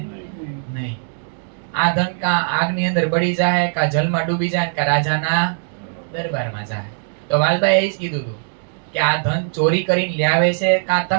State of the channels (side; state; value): left; silent; digital silence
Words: નહીં. આ ધન કા આગની અંદર બળી જાય, કા જલમાં ડૂબી જાય, કા રાજાના દરબારમાં જાય. તો વાલબાઈએ એ જ કીધું હતું કે આ ધન ચોરી કરીને લાવે છે, કાં